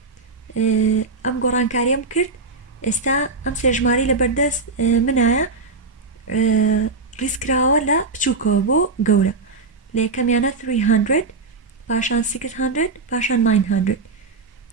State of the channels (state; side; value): quieter; left; 3.9 dB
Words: ئەم گۆڕانکاریەم کرد. ئێستا ئەم 3 ژمارەی لە بەردەست منایە ڕیزکراوە لە بچووکەوە بۆ گەورە. لە یەکەمیانە 300، پاشان 600، پاشان 900.